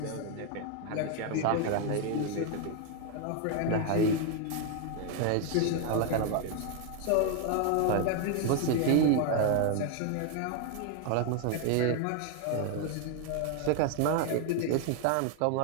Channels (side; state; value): both; different; correlation 0.01